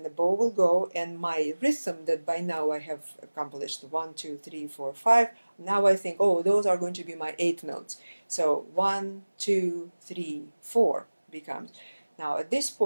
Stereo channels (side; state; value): both; inverted; correlation -1.00